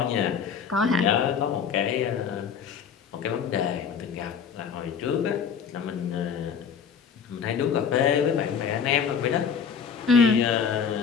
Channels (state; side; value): quieter; right; 6.8 dB